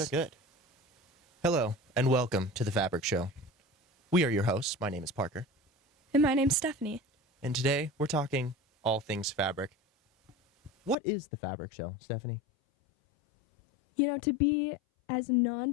good. Hello, and welcome to The Fabric Show. We are your hosts. My name is Parker. And my name's Stephanie. And today, we're talking all things fabric. What is The Fabric Show, Stephanie? You know, to be as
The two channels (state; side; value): drops out; right; at 11.0 s